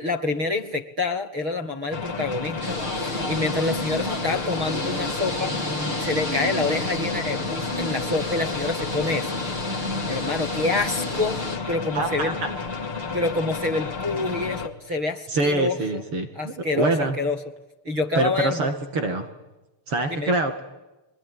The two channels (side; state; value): left; late; 6.7 ms